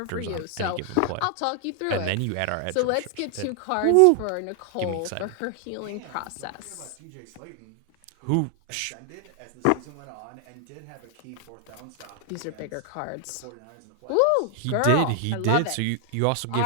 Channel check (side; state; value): both; different; correlation 0.00